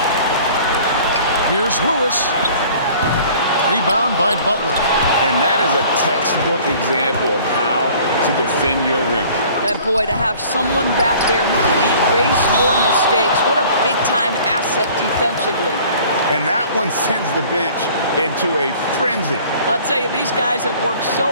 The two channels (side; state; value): both; inverted; correlation -0.50